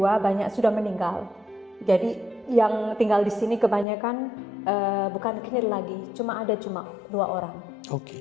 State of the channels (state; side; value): drops out; right; at 3.9 s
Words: banyak sudah meninggal. Jadi yang tinggal di sini kebanyakan bukan knil lagi, cuma 2 orang.